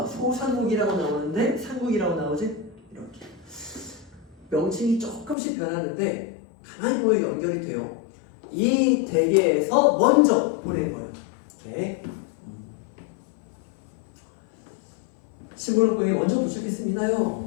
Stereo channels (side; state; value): right; drops out; at 5.4 s